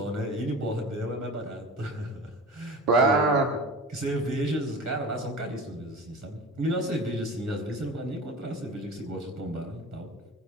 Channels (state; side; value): normal; both; correlation 0.35